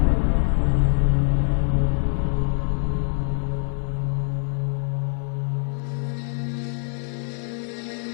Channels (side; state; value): right; silent; 63 dB below the other